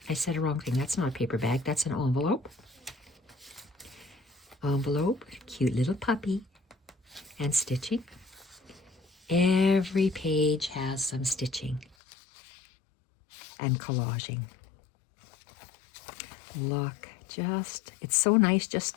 I said a wrong thing. That's not a paper bag. That's an envelope. Envelope, cute little puppy, and stitching. Every page has some stitching and collaging. Look, it's so nice just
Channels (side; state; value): right; drops out; at 12.0 s